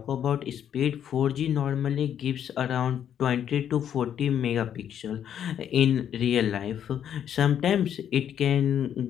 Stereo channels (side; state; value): right; quieter; 9.4 dB